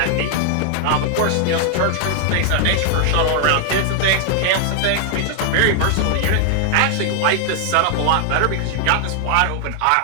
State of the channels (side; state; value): both; different; correlation 0.00